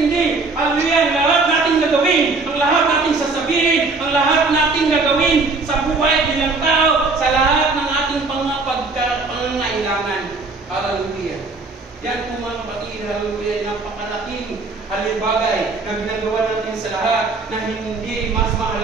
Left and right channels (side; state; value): left; quieter; 3.8 dB